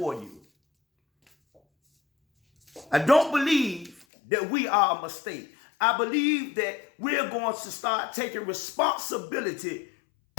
you. I don't believe that we are a mistake. I believe that we're going to start taking responsibility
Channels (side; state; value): right; drops out; at 4.0 s